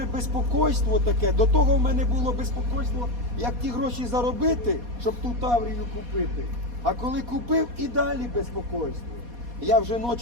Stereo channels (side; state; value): left; late; 4.2 ms